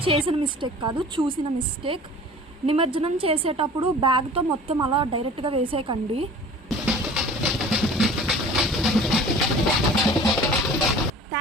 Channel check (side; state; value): both; normal; correlation 0.44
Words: చేసిన మిస్టేక్ కాదు, చూసిన మిస్టేక్. నిమజ్జనం చేసేటప్పుడు బ్యాగ్తో మొత్తం అలా డైరెక్ట్గా వేసేయకండి.